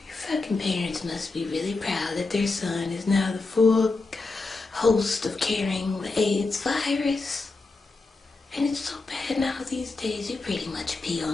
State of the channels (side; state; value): right; quieter; 3.7 dB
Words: parents must be really proud that their son is now the full host of carrying the AIDS virus. And it's so bad now these days, you pretty much pee